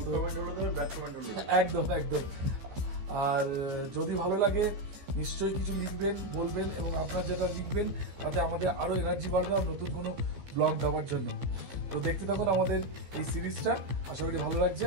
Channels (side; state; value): left; late; 15 ms